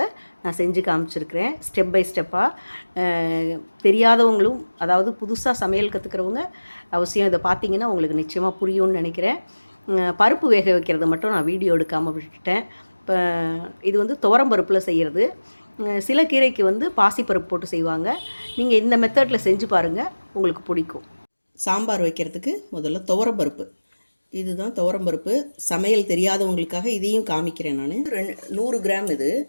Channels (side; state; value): both; inverted; correlation -1.00